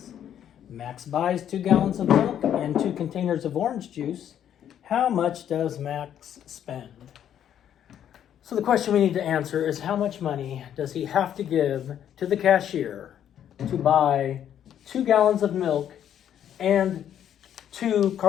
Max buys 2 gallons of milk and 2 containers of orange juice. How much does Max spend? So the question we need to answer is, how much money does he have to give to the cashier to buy 2 gallons of milk and 2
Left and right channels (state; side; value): quieter; right; 9.9 dB